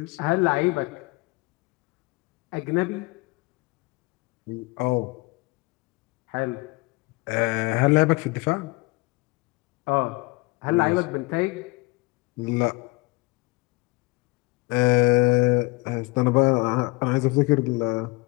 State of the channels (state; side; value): quieter; right; 24.2 dB